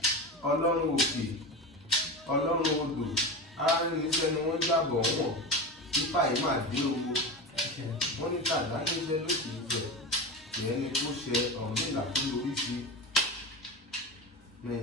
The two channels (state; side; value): normal; both; correlation 0.24